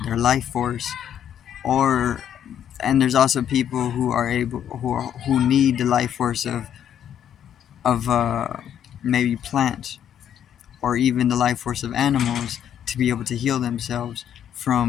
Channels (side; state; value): right; quieter; 9.7 dB